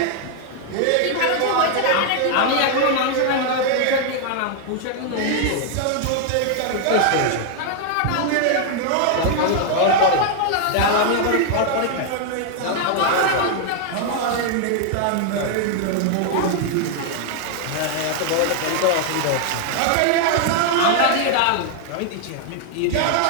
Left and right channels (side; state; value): both; different; correlation 0.00